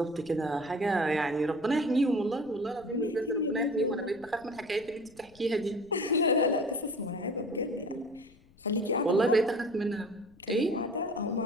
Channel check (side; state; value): left; noise; rumble, 27 dB below the sound